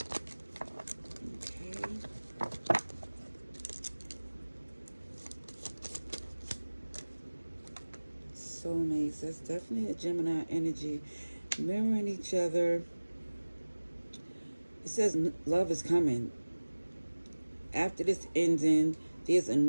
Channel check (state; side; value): inverted; both; correlation -1.00